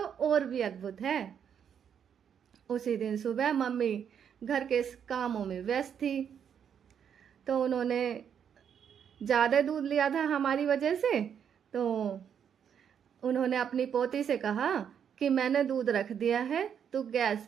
और भी अद्भुत है। उसी दिन सुबह मम्मी घर के कामों में व्यस्त थी, तो उन्होंने ज़्यादा दूध लिया था हमारी वजह से। तो उन्होंने अपनी पोती से कहा कि मैंने दूध रख दिया है, तो गैस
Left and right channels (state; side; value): quieter; left; 8.1 dB